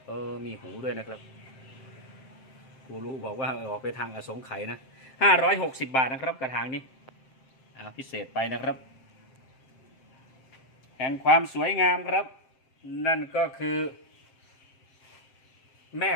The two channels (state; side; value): late; right; 7.6 ms